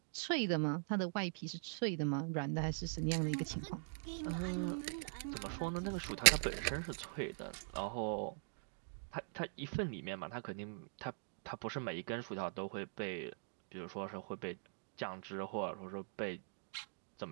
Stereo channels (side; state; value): left; silent; digital silence